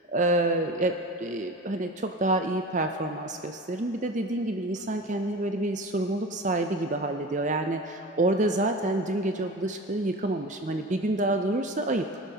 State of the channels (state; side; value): normal; both; correlation 0.33